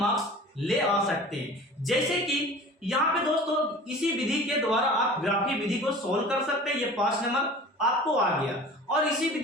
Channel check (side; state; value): both; normal; correlation 0.41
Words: ले आ सकते हैं। जैसे कि यहाँ पे दोस्तों इसी विधि के द्वारा आप ग्राफी विधि को सोल्व कर सकते हैं, ये 5 नंबर आपको आ गया। और इसी